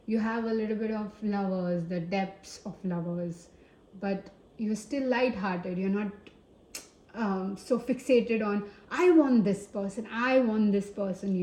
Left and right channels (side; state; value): both; identical; correlation 1.00